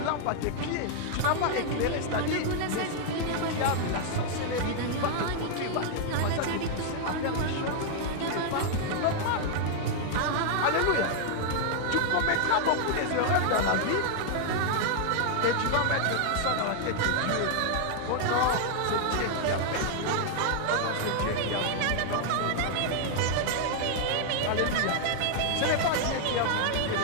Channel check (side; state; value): both; different; correlation -0.01